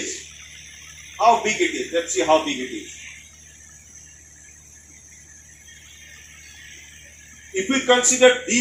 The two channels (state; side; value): identical; both; correlation 1.00